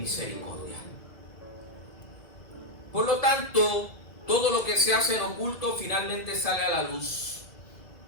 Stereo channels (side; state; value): right; late; 2.0 ms